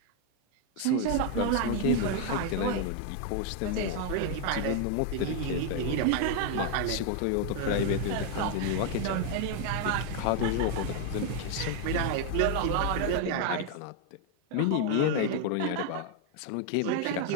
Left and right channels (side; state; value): both; different; correlation 0.00